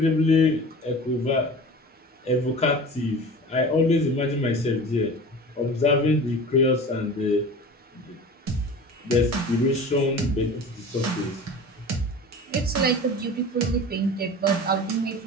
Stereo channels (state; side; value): normal; both; correlation 0.37